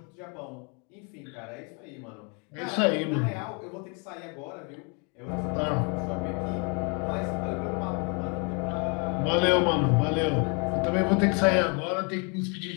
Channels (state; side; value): quieter; right; 35.1 dB